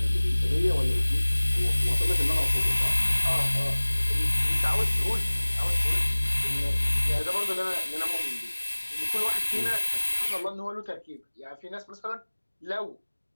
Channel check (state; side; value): inverted; both; correlation -1.00